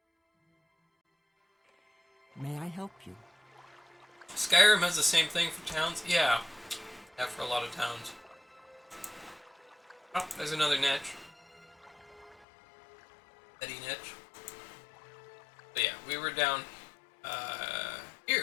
May I help you? Skyrim has the same thing for towns? Yeah. Yeah, for a lot of towns. Oh, there's another niche. Eddie niche. But yeah, we were down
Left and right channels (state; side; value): drops out; right; at 12.5 s